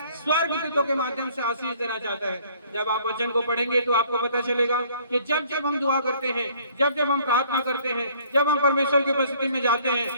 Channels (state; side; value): inverted; both; correlation -0.58